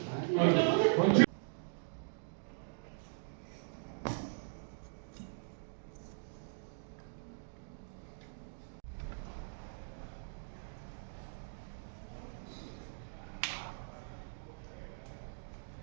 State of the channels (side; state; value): left; silent; digital silence